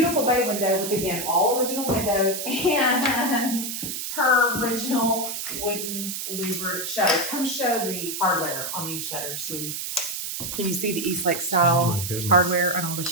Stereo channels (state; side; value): noise; right; hiss, 5 dB below the sound